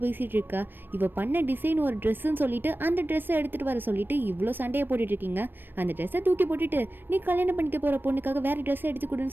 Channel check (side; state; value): left; late; 0.095 ms